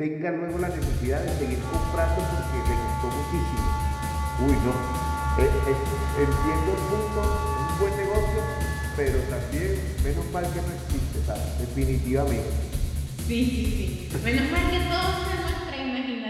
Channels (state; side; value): identical; both; correlation 1.00